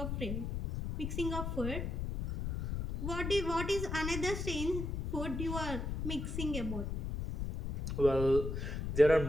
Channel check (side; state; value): left; noise; rumble, 3 dB below the sound